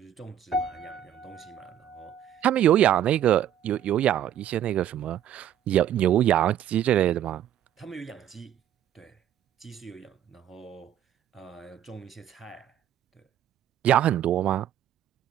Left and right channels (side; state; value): left; quieter; 10.7 dB